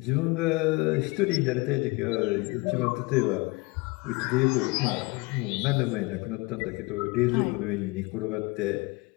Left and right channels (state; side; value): quieter; right; 24.8 dB